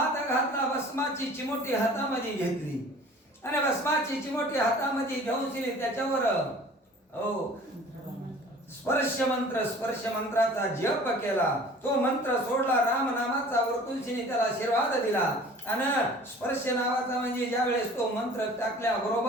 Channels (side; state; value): both; normal; correlation 0.47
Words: घातला, भस्माची चिमोटी हातामध्ये घेतली आणि भस्माची चिमोटी हातामध्ये घेऊन त्याच्यावर स्पर्श मंत्राचा जप केला. तो मंत्र सोडला, राम नामाचा वरतुलशीने त्याला आशीर्वाद दिला. आणि स्पर्श नावाचा म्हणजे ज्या वेळेस तो मंत्र टाकल्या